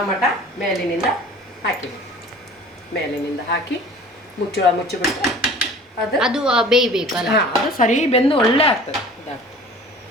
ಮೇಲಿನಿಂದ ಹಾಕಿದೆ. ಮೇಲಿನಿಂದ ಹಾಕಿ ಮುಚ್ಚಿಬಿಟ್ರೆ ಅದು ಬೇಯಬೇಕಲ್ಲ, ಅದು ಸರಿ ಬೆಂದು ಒಳ್ಳೆ ಆಗ್ತದೆ.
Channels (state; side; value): normal; both; correlation 0.45